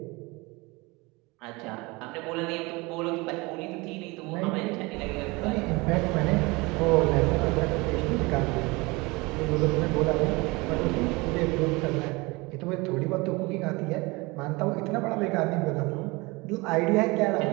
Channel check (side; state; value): left; quieter; 24.6 dB